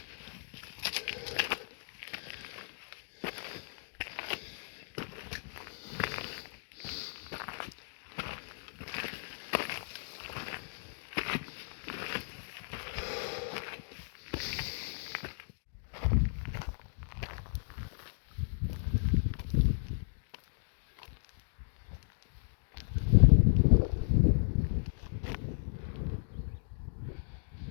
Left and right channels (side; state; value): right; silent; digital silence